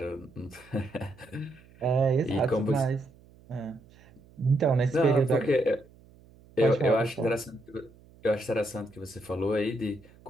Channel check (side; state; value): right; noise; hum, 26 dB below the sound